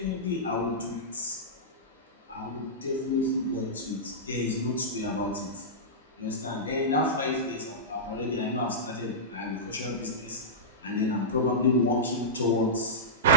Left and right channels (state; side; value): normal; both; correlation -0.14